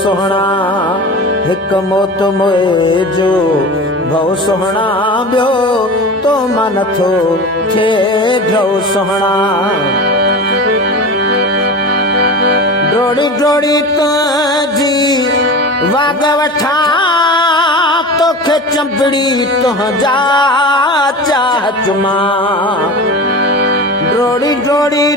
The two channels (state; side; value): normal; both; correlation 0.31